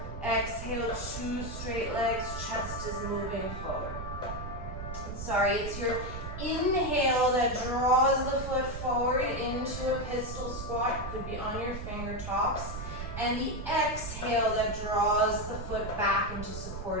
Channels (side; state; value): right; noise; rumble, 7 dB below the sound